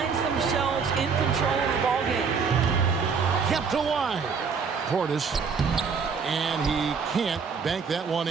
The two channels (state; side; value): quieter; left; 5.7 dB